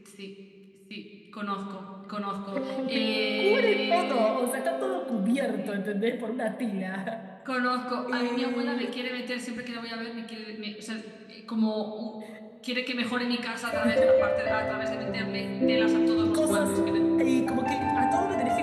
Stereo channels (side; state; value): both; identical; correlation 1.00